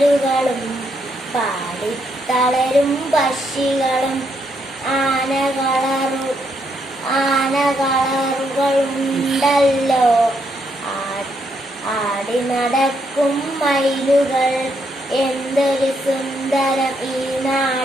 പാടി തളരും പക്ഷികളും. ആനകളറുകളുണ്ടല്ലോ, ആടി നടക്കും മയിലുകൾ. എന്തൊരു സുന്ദരം ഈ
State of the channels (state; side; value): normal; both; correlation 0.76